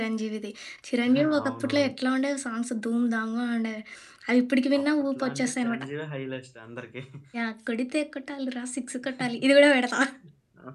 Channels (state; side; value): identical; both; correlation 1.00